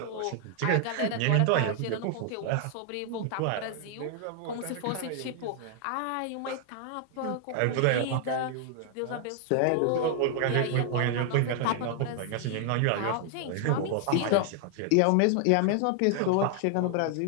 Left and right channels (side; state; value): both; different; correlation 0.00